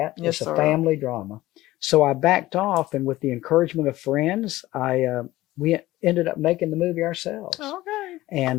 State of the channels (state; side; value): quieter; right; 16.9 dB